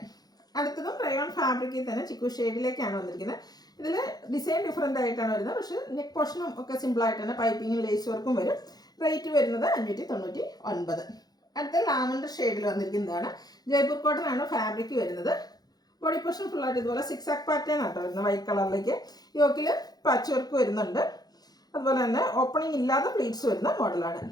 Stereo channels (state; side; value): late; right; 0.19 ms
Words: അടുത്തതും റയോൺ ഫാബ്രിക്കിൽ തന്നെ ചിക്കു ഷെയ്ഡിലേക്കാണ് വന്നിരിക്കുന്നത്. ഇതിൽ ഡിസൈൻ ഡിഫറെൻ്റ് ആയിട്ടാണ് വരുന്നത്. പക്ഷേ നെക്ക് പോർഷനും ഒക്കെ സിമ്പിളായിട്ട് തന്നെ പൈപ്പിങ്ങും ലേസ് വർക്കും വരും. റേറ്റ് വരുന്നത് 599. അടുത്ത ലാവൻഡർ ഷെയ്ഡിൽ വന്നിരിക്കുന്നതാണ്. ജയ്പൂർ കോട്ടൺ ആണ് ഫാബ്രിക് വരുന്നത്. ബോഡി പോർഷൻ ഫുള്ളായിട്ട് ഇതുപോലെ 6 ആക്ക് പാറ്റേൺ ആട്ടോ വരുന്നത്. വൈറ്റ് കളറിലേക്ക് യോക്കിൽ പാച്ച് വർക്ക് വരുന്നുണ്ട്. അതുപോലെ തന്നെ ഓപ്പണിംഗ് ഇല്ലാതെ പ്ലീറ്റ്സ് വരുന്ന മോഡലാണ്.